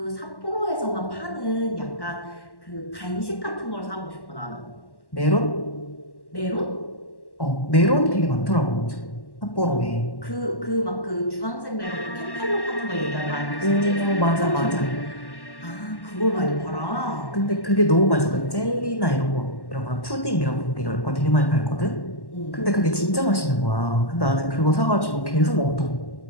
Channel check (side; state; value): right; late; 1.1 ms